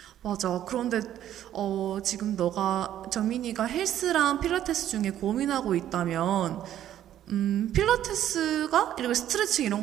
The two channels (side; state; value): left; quieter; 11.5 dB